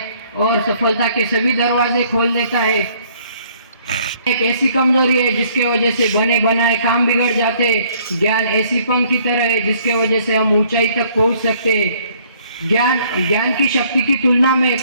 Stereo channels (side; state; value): both; inverted; correlation -0.62